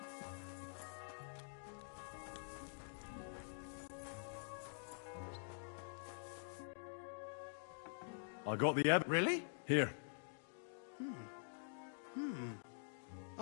I got the Really? Here.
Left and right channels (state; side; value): silent; right; digital silence